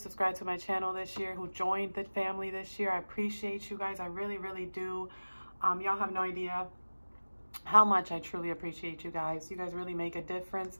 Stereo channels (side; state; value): both; inverted; correlation -1.00